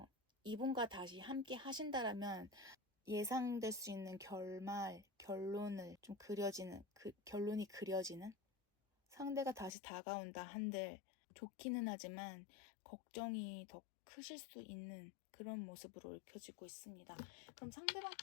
이분과 다시 함께 하신다라면 예상될 수 있는 결론을 좀 그려지는, 결론이 그려지는, 상대가 다시 다가온다 한들 좋기는 하지만 걱정이 더 크실 수 있는 그런 모습으로 읽혀지고 있습니다. 그럼 상대방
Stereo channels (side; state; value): right; drops out; at 9.8 s